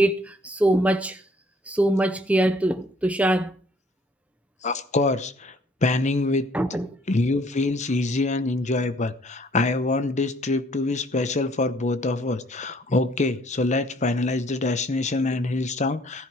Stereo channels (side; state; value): both; normal; correlation 0.61